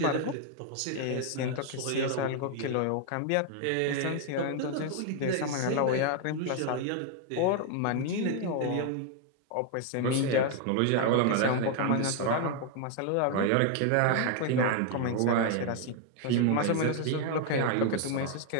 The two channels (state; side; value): different; both; correlation 0.00